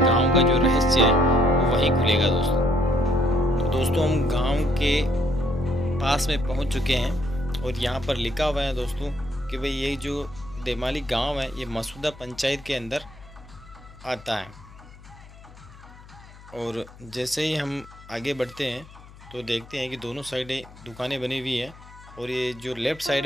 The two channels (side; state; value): left; noise; hum, 20 dB below the sound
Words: गांव का जो रहस्य है वो वहीं खुलेगा दोस्तों। तो दोस्तों हम गांव के पास में पहुंच चुके हैं, और यहाँ पर लिखा हुआ है दोस्तों कि भाई ये जो देमाली गांव है ये मसूदा पंचायत के अंदर आता है। और जैसे ही हम आगे बढ़ते हैं तो देखते हैं कि दोनों साइडें दुकानें बनी हुई हैं, और ये जो लेफ़्ट साइड